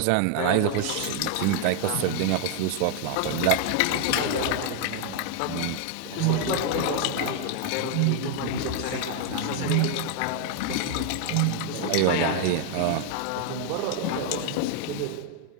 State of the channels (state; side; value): different; both; correlation 0.00